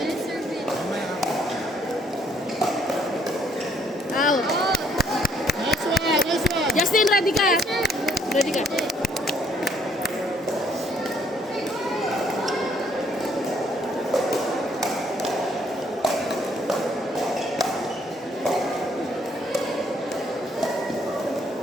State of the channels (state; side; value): normal; both; correlation 0.66